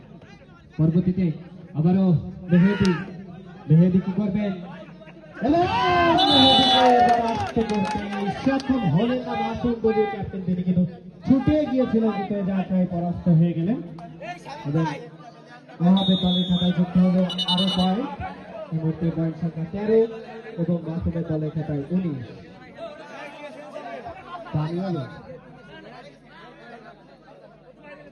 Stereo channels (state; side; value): identical; both; correlation 1.00